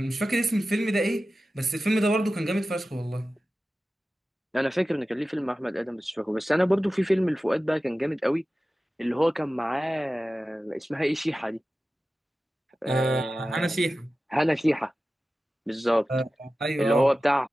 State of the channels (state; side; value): normal; both; correlation 0.95